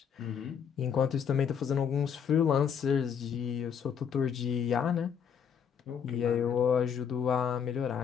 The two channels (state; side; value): quieter; right; 7.5 dB